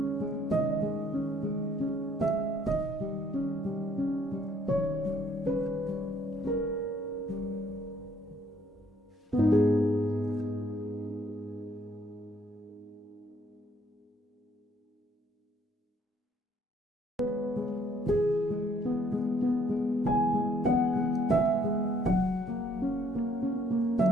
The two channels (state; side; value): normal; both; correlation 0.65